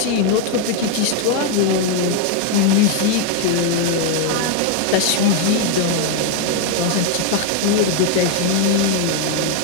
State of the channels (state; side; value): different; both; correlation 0.01